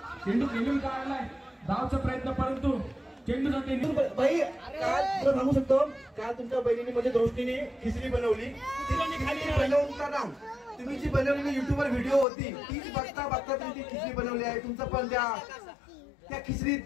चेंडू खेळून काढलाय. धावचा प्रयत्न परंतु चेंडू जाते. भाई काल तुला सांगू शकतो काल तुमच्या बहिणीने म्हणजे दृष्टीने खिचडी बनवली. तिला खाली बनवून तुम्ही जी बनवलेली युट्यूबवर व्हिडिओ होती तीच बघता बघता तुम्ही ती खिचडी बनवली आहे. तुमचं पण त्या खिचडीत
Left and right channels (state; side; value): drops out; right; at 12.2 s